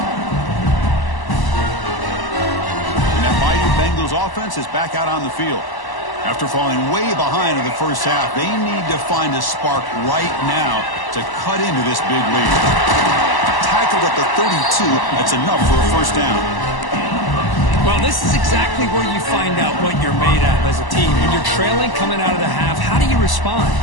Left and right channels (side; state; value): right; late; 1.0 ms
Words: And that mighty Bengals offense is back out on the field. After falling way behind in the first half, they need to find a spark right now to cut into this big lead. Tackled at the 32, that's enough for a first down. Well, this is exactly where you find out what you're made of as a team. When you're trailing coming out of the half, how do you respond?